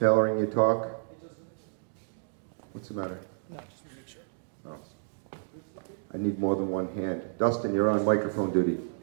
Tailoring your talk. What's the matter? No, just to make sure. Oh. I need more than one hand. Dustin, you're on microphone duty.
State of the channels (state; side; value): silent; left; digital silence